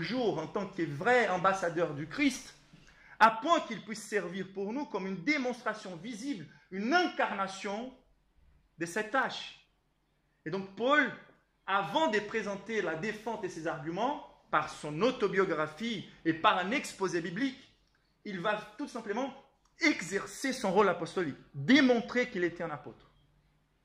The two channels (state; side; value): identical; both; correlation 1.00